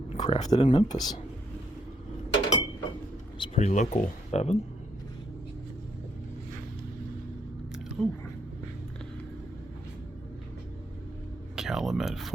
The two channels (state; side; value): normal; both; correlation 0.73